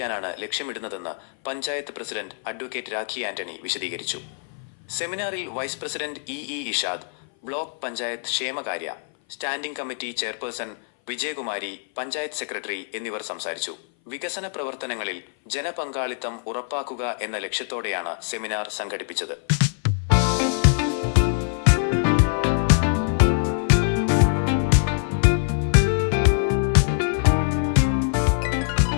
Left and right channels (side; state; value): right; silent; 59 dB below the other